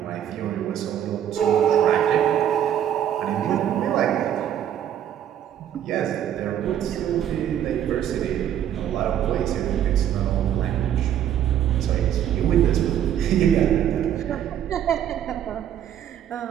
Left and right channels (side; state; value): left; quieter; 10.3 dB